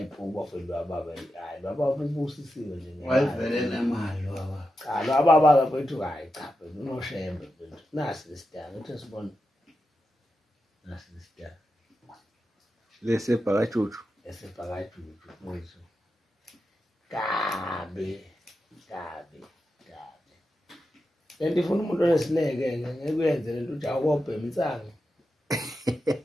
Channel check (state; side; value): normal; both; correlation 0.89